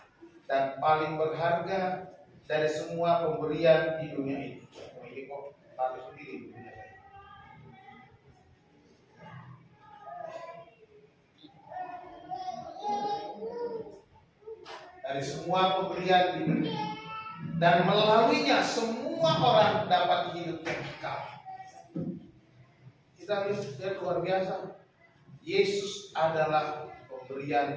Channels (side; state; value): both; identical; correlation 1.00